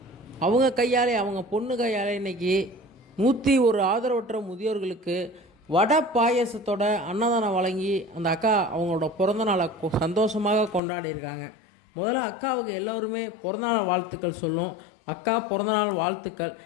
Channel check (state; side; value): drops out; right; at 10.8 s